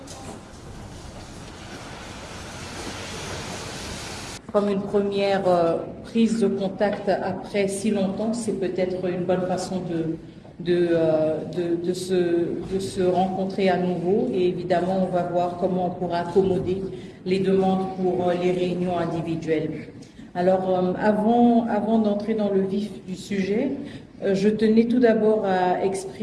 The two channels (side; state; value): both; identical; correlation 1.00